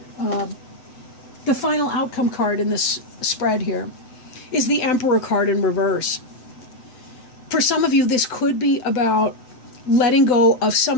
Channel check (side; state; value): right; late; 7.9 ms